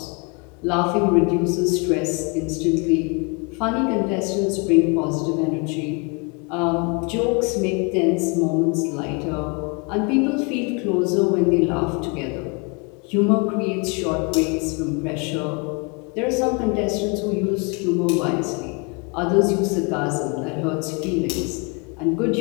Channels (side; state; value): right; quieter; 32.1 dB